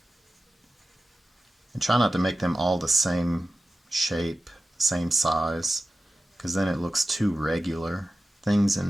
And try not to make them all the same shape, same size, because then it looks too regular. Things in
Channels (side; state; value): both; normal; correlation 0.94